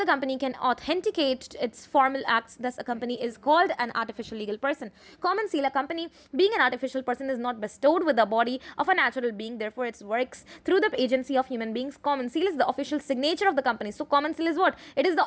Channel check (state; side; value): identical; both; correlation 1.00